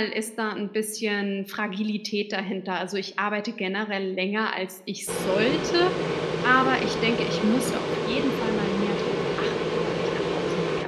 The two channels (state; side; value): identical; both; correlation 1.00